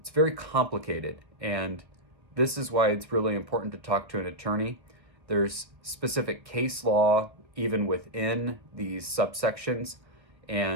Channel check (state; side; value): late; left; 1.4 ms